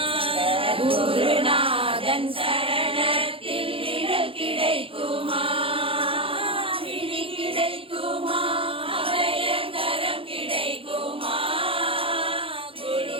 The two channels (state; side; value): late; left; 0.26 ms